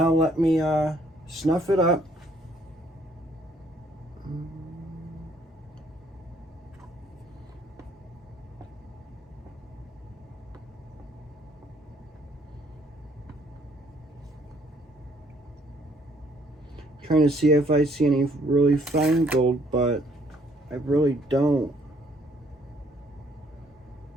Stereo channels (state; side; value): normal; both; correlation 0.65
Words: let me snuff it up. Trying to see if I see any really fine gold, but I really don't.